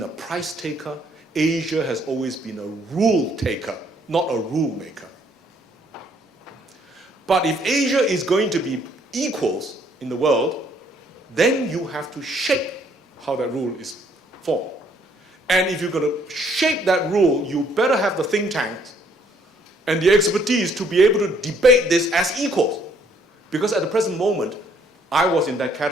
a price taker. Asia has always been a rule taker, not a rule maker. But if Asia is going to be equals in the world, then you have to shape how that rule is formed. And if you're going to shape that rule, you better have the think tanks and the expertise to be able to debate this as equals. Because at the present moment, I was in that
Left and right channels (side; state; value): both; normal; correlation 0.65